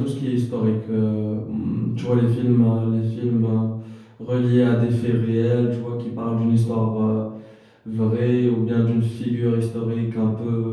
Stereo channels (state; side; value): identical; both; correlation 1.00